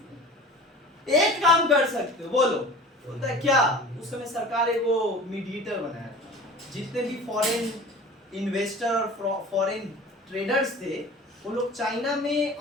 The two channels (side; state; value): both; normal; correlation 0.40